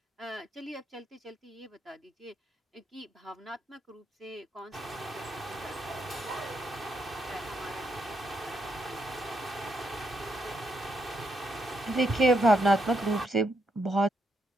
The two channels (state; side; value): normal; both; correlation 0.78